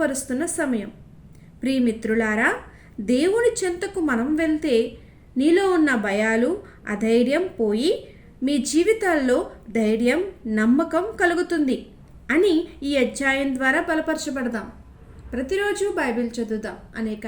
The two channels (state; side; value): identical; both; correlation 1.00